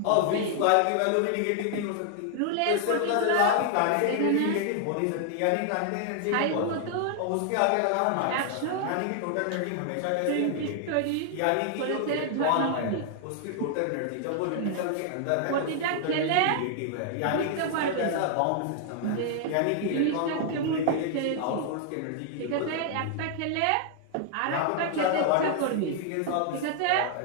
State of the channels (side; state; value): both; different; correlation 0.00